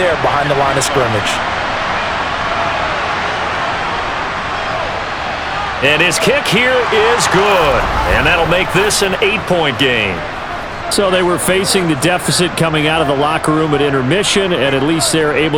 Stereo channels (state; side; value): identical; both; correlation 1.00